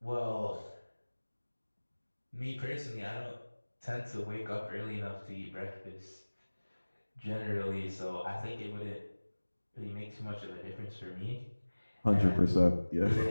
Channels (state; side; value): inverted; both; correlation -1.00